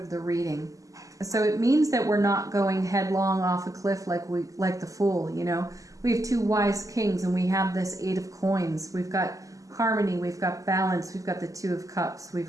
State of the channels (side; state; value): left; late; 0.16 ms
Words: the reading. So it means that we're not going headlong off a cliff like the Fool, you know. We have two wise kings, and we have this Eight of Coins. We've got harmony, we've got balance, we've got the Two of Cups,